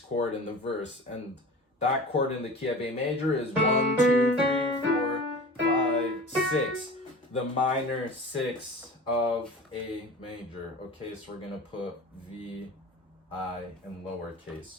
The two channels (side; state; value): both; normal; correlation 0.37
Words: in the verse. And that chord in the key of A major is 1, 2, 3, 4, 5, 6. The minor 6 of A major. Okay, so we're going to put V, I in